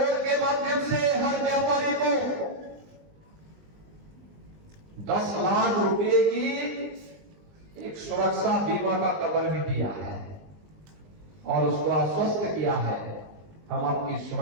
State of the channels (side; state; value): left; late; 20 ms